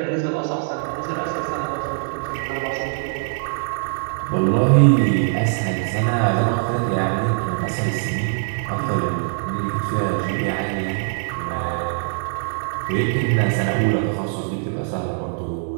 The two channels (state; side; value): silent; left; digital silence